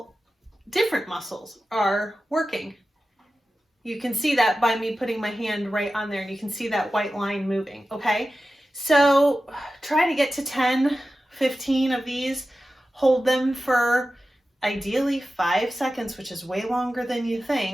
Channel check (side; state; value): both; normal; correlation 0.94